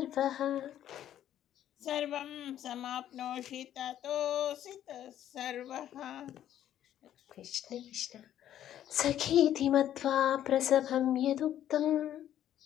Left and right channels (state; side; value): quieter; right; 11.3 dB